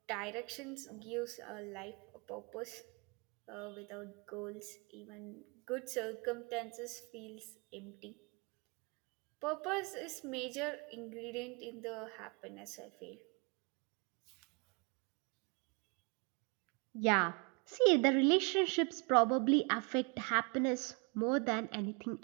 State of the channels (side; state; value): left; quieter; 32.9 dB